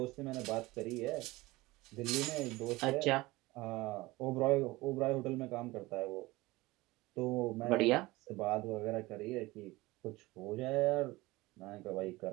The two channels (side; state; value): left; quieter; 20.4 dB